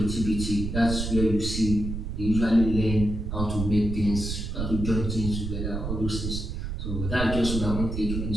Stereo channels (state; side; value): noise; right; rumble, 4 dB below the sound